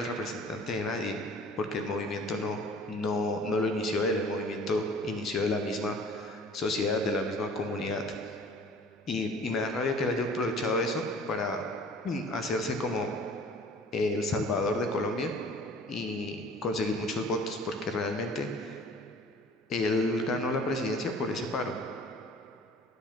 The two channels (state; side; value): normal; both; correlation 0.48